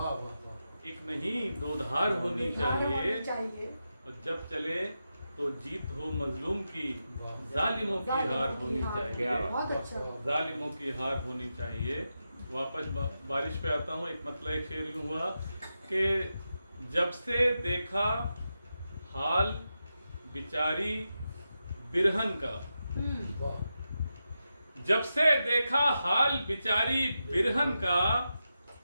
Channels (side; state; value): both; inverted; correlation -0.89